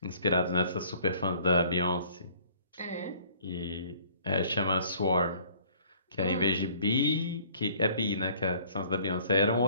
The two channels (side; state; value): both; inverted; correlation -0.56